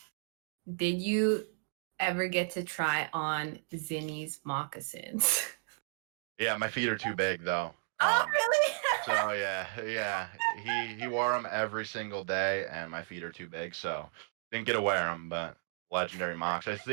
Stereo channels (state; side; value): silent; left; digital silence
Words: did you ever get to try on Zinni's moccasins? Yeah, my feet are too big though. Oh, really? So yeah, yeah, he wore them every single day, and my feet are too big, so didn't get to wear them. But legendary mocks, I